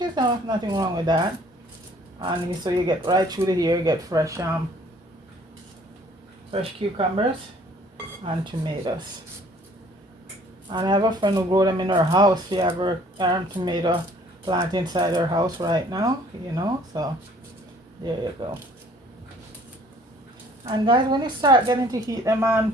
is nothing wrong with that. And so you get right through the year, you get fresh cucumbers and tomatoes. And I have a friend who grew them in her house. She have her tomato plant inside her house right now, so there you go. And guys, when you start getting to heat them on,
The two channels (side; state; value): both; normal; correlation 0.57